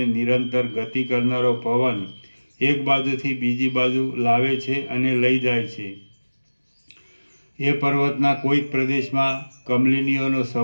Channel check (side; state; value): both; inverted; correlation -1.00